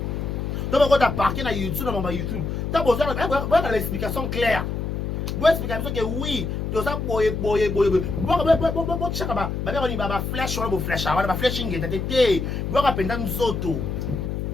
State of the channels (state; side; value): noise; left; hum, 3 dB below the sound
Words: to mo kota parquet na YouTube na makambo ya YouTube ta besoin de l'explication claire. Vous expliquez que oui, tout ça boye. Bon chaka ba flash on flash ba flashing tete. Bo ka penda nzoto.